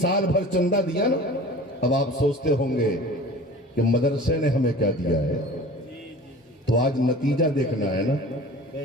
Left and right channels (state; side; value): normal; both; correlation 0.40